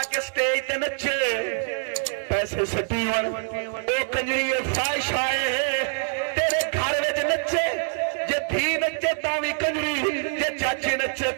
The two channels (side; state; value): left; silent; digital silence